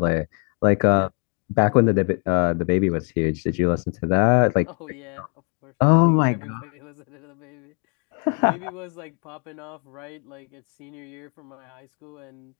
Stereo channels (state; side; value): quieter; right; 36.8 dB